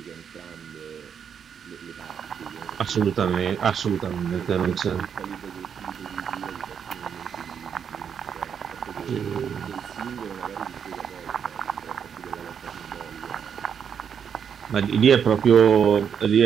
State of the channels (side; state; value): left; quieter; 7.6 dB